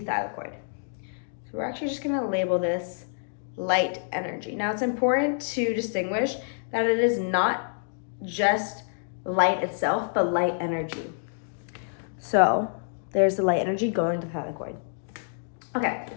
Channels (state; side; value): silent; right; digital silence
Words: So we're actually just going to label this light energy. Now it's important to distinguish that it is not just light itself, but light energy. So There's the light energy going to the thylakoid. Okay,